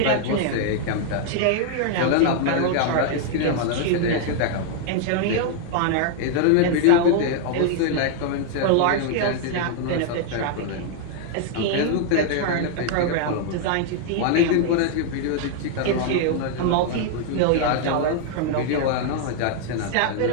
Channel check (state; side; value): different; both; correlation 0.00